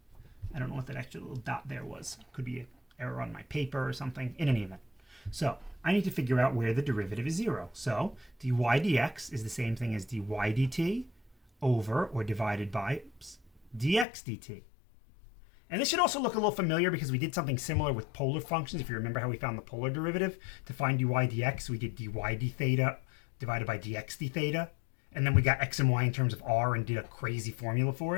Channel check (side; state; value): right; drops out; at 14.1 s